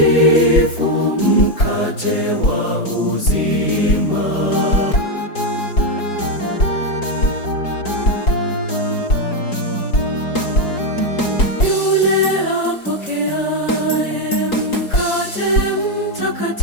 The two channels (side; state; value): right; late; 4.8 ms